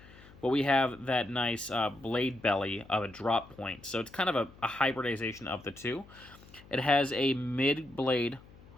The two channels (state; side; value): noise; left; hum, 22 dB below the sound